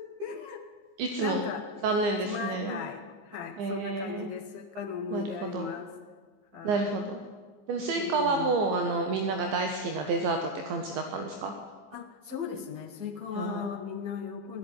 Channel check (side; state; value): left; late; 15 ms